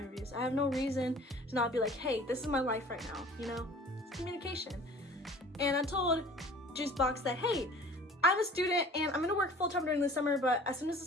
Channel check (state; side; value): normal; both; correlation 0.47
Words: I have no reason to not be like, hey, this is my life right now, you know? It's communication. And I told Juicebox that, hey, I'm a student and I'm gonna work full-time during the summer, but as soon as the